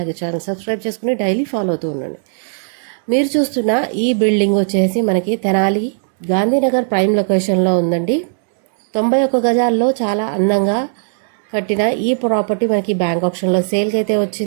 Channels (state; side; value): silent; left; 68 dB below the other